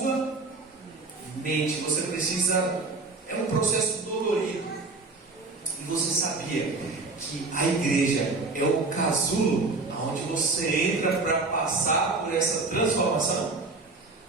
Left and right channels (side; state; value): left; quieter; 3.6 dB